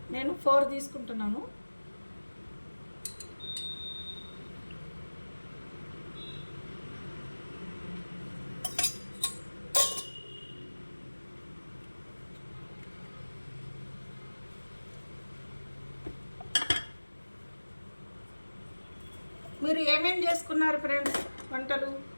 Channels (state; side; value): inverted; both; correlation -1.00